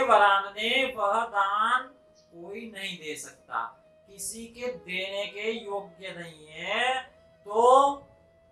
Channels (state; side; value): identical; both; correlation 1.00